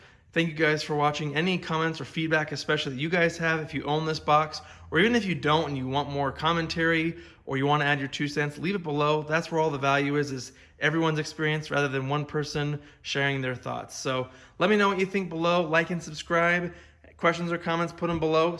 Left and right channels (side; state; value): both; identical; correlation 1.00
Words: Thank you guys for watching. Any comments or feedback, especially that you guys have if you own this box, or even if you don't and you want more commentary or you want to add your 2 cents, leave it below. That's where all the value is everyone's experience rather than one person sharing their thoughts. So let me know what you think below. Like and subscribe. Questions or comments, put them below.